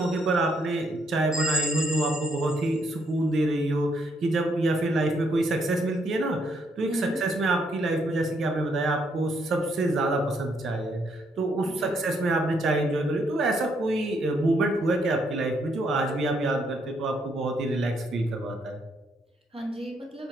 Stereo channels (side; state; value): both; normal; correlation 0.73